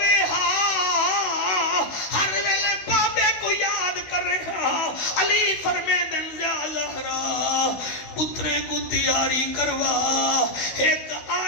ہر ویلے بابے کو یاد کر رہا علی فرمیدن زہرا پترے کو تیاری کروا ایک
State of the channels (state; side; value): late; right; 16 ms